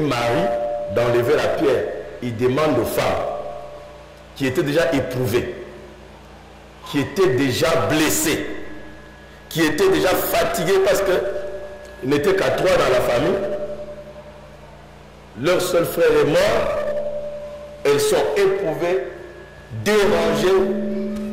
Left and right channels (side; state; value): both; identical; correlation 1.00